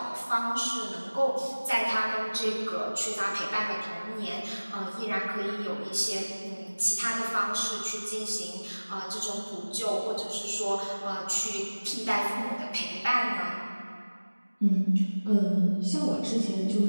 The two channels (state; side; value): inverted; both; correlation -1.00